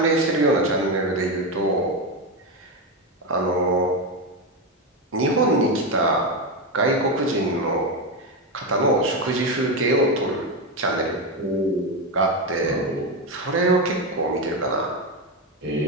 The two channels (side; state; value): both; normal; correlation 0.12